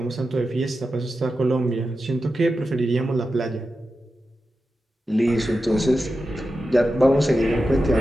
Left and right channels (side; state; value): both; normal; correlation 0.91